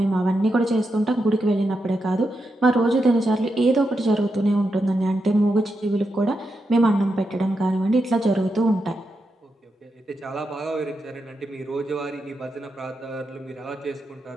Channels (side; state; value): both; normal; correlation 0.85